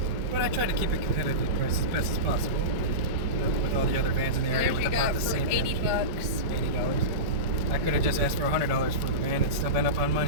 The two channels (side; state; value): left; late; 5.2 ms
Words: But I tried to keep it competitive price as best as possible with all the other vans in the area with about the same. $80. $80. I could have just asked for $100 for the van and still been up on